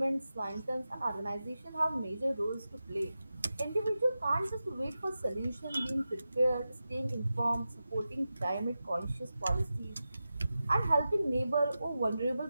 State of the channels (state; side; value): inverted; both; correlation -0.92